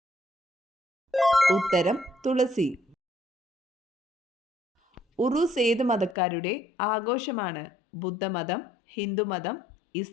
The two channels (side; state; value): right; drops out; at 6.2 s